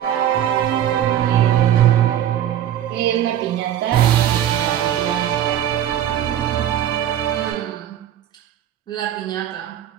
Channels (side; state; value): left; quieter; 11.0 dB